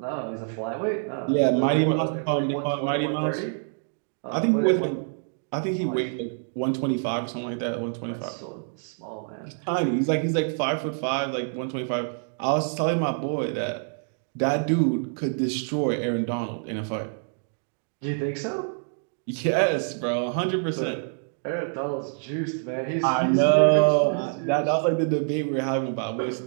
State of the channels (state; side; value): silent; left; 59 dB below the other